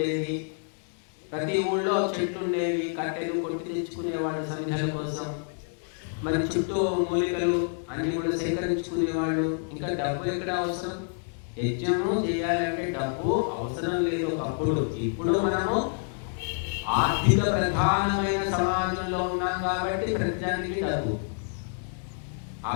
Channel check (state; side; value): silent; right; 59 dB below the other